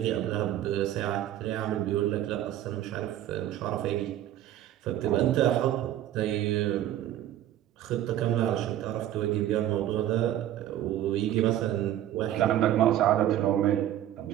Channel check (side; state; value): left; quieter; 12.4 dB